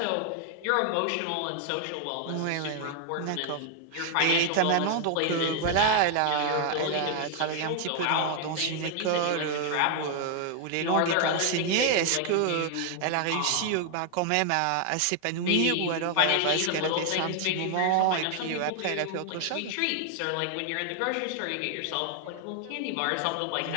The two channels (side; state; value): both; different; correlation 0.00